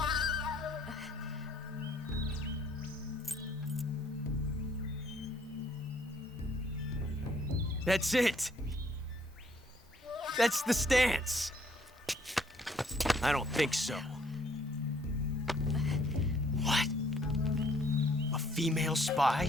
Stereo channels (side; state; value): both; normal; correlation 0.64